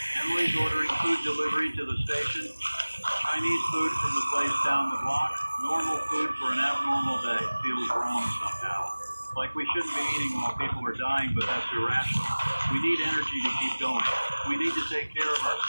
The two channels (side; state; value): both; inverted; correlation -1.00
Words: Emily's ordering food delivery to the station. Chinese food from the place down the block. Normal food for an abnormal day. Feels wrong somehow. Like we shouldn't be eating while people are dying, but that's irrational. We need energy to keep going. We need to take care of